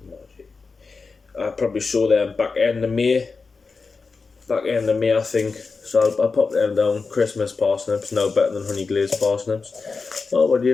I'll probably sow them back end of May. I think. So I'll pop them down. Christmas parsnips, now better than honey glazed parsnips. Oh, what do you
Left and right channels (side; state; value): right; quieter; 4.5 dB